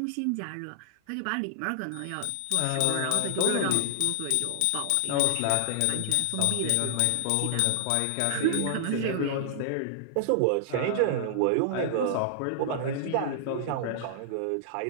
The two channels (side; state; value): both; different; correlation -0.01